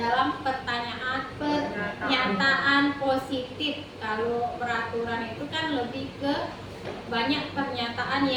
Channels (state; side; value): identical; both; correlation 1.00